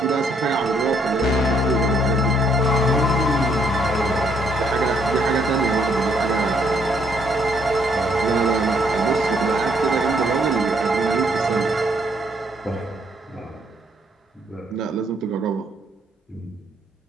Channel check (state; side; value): normal; both; correlation 0.69